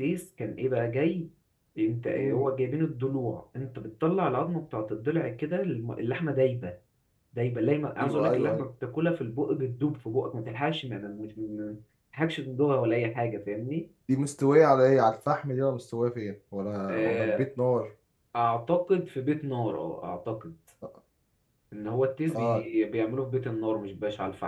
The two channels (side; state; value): both; identical; correlation 1.00